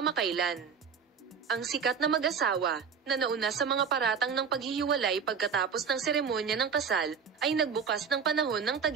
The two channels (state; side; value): quieter; left; 6.3 dB